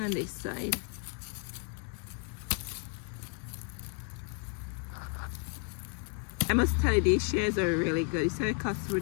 this side. I must tell you, these shares are really good. You see how it cuts through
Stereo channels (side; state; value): right; quieter; 37.7 dB